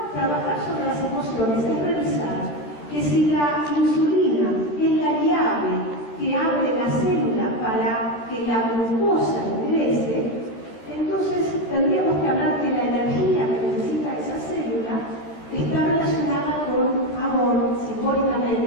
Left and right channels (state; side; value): late; right; 14 ms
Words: trabajar sobre las emociones es revisar que si la insulina es la llave que abre la célula para que la glucosa ingrese, entonces tendríamos que hablar que la energía que necesita esa célula está relacionada con amor,